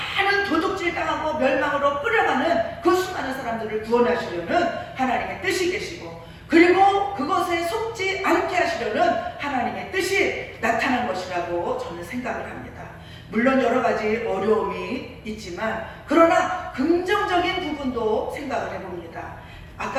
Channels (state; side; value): identical; both; correlation 1.00